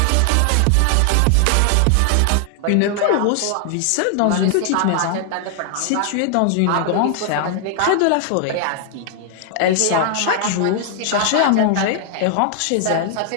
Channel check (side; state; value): both; different; correlation 0.00